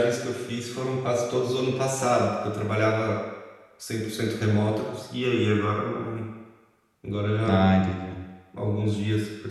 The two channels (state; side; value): identical; both; correlation 1.00